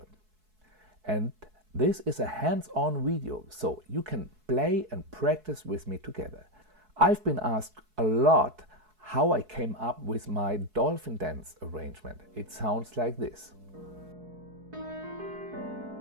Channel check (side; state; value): left; late; 4.7 ms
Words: And this is a hands-on video, so you can play and practice with me together. I've been asked a lot how I came up with my Dolphin Dance arrangement. It sounds like this.